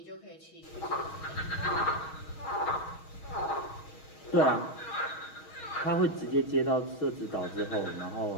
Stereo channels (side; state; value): right; late; 6.3 ms